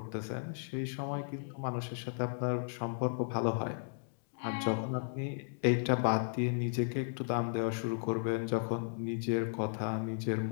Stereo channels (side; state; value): right; silent; digital silence